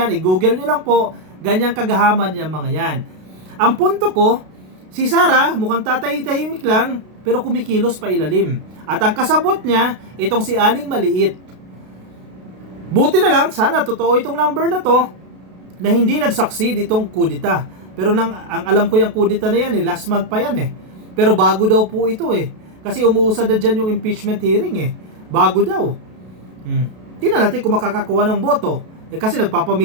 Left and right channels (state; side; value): late; left; 32 ms